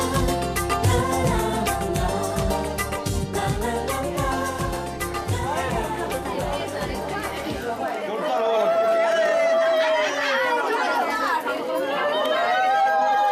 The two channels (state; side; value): identical; both; correlation 1.00